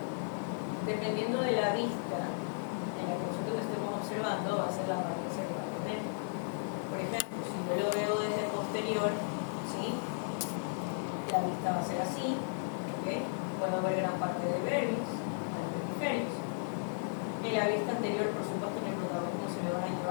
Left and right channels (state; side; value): silent; right; digital silence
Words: Dependiendo de la vista en la que nosotros estemos observando, va a ser la apariencia que va a tener. Por ejemplo, si yo lo veo desde posterior, ¿sí? La vista va a ser así, ¿ok? Puedo ver gran parte del vermis, hemisferios. En la vista anterior, por supuesto, en el protagonismo se le van a